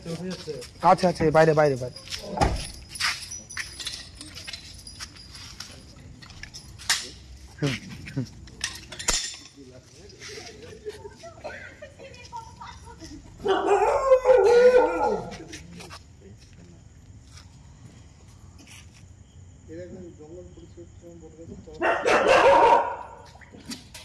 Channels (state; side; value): identical; both; correlation 1.00